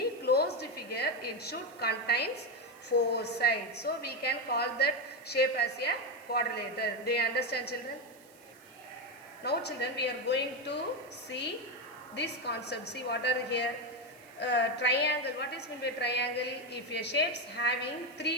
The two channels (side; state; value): right; noise; hiss, 26 dB below the sound